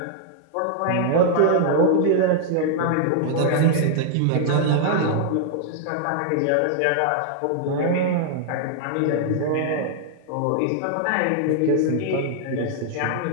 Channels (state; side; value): different; both; correlation 0.00